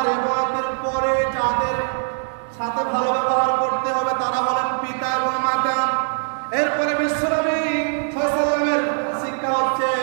ইবাদতের পরে যাদের সাথে ভালো ব্যবহার করতে হবে তারা হলেন পিতা এবং মাতা। এরপরে বিশ্বনবী সাল্লাল্লাহু আলাইহি ওয়াসাল্লামের শিক্ষা হচ্ছে,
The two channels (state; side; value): silent; left; digital silence